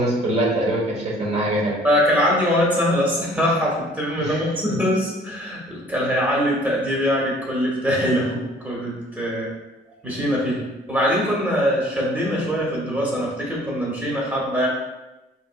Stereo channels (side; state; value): both; normal; correlation 0.54